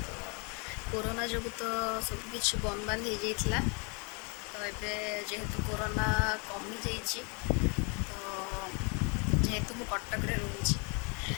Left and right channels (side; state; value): right; quieter; 34.3 dB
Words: कोरोना जो तो सबकि बंद बांध हो जाता। तो ये जेहेतु कोरोना कमी जाइए तो जेहेतु मु कटक रोचे